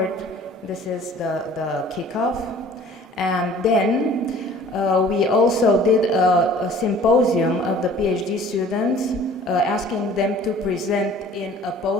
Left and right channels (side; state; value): both; normal; correlation 0.49